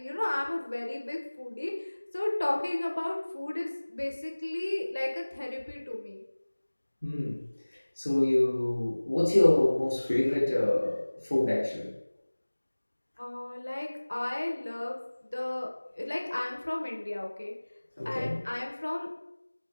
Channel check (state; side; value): inverted; both; correlation -1.00